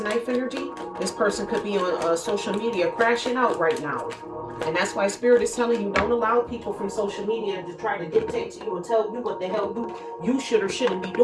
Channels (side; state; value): both; identical; correlation 1.00